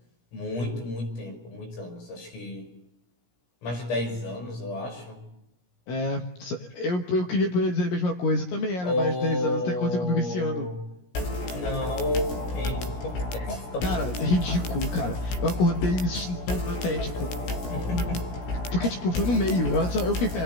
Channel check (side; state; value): right; late; 17 ms